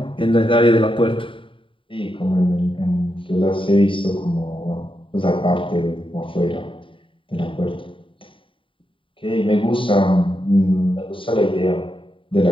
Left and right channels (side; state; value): right; late; 0.25 ms